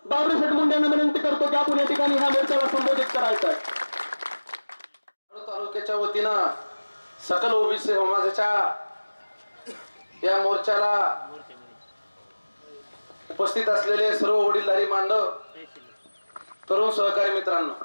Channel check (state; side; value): inverted; both; correlation -1.00